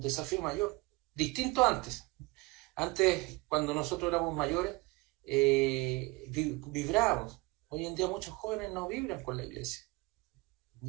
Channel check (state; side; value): quieter; left; 24.4 dB